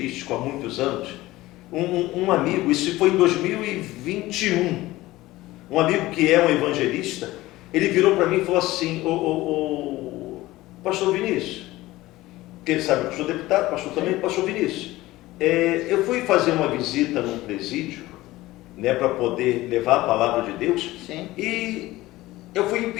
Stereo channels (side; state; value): right; quieter; 17.8 dB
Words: há muitos anos, um amigo, isso foi em 2021, um amigo que é um evangelista, ele virou para mim e falou assim: pastor Vinícius, que ele sabe que eu sou deputado, pastor também, pastor Vinícius, eu fui fazer uma visita num presídio, né, para poder levar a palavra de Deus. Sim. E eu fui